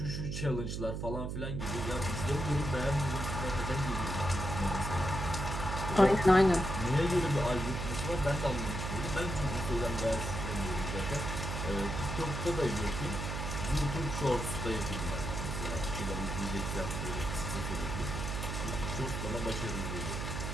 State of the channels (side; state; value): right; noise; hum, 3 dB below the sound